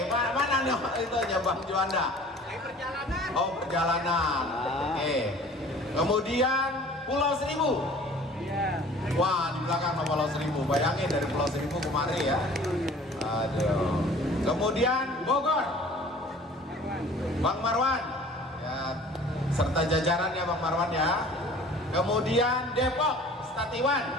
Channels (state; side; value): normal; both; correlation 0.48